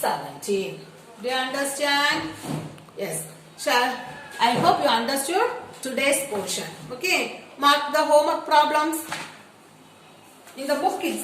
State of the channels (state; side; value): identical; both; correlation 1.00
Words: Do you understand? Yes. I hope you understood today's portion. Okay. Mark the homework problems. In the book